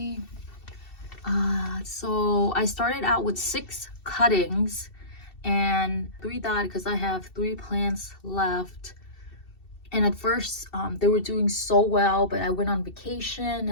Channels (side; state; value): right; late; 2.7 ms